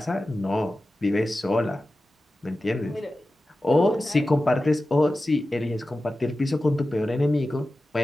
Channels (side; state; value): both; normal; correlation 0.94